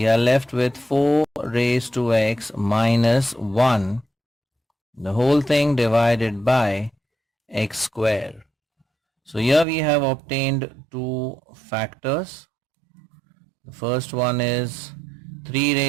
are left with 4 raised to x minus 1, the whole thing divided by x square. So here we have obtained two factors. The first one is 3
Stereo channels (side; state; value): left; drops out; at 9.7 s